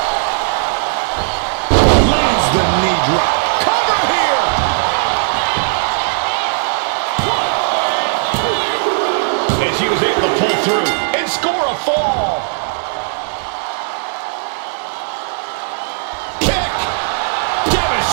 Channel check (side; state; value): left; silent; digital silence